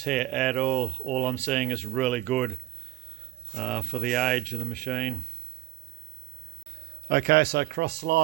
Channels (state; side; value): quieter; left; 18.4 dB